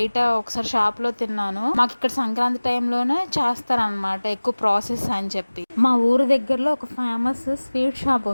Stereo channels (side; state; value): both; inverted; correlation -1.00